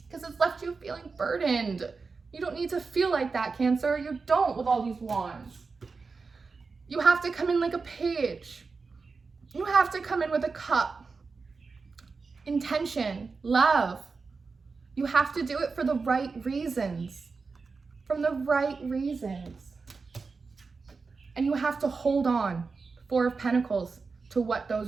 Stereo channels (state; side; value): quieter; left; 4.5 dB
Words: Because it's left you feeling burdened. You don't need to feel like that, Cancer. You don't, with all these wands. You have to come in like a page. You have to come in with a cup. Intention, love. You have to do it for the right reasons. From the right reasons. And you have to hold on Four of Pentacles to what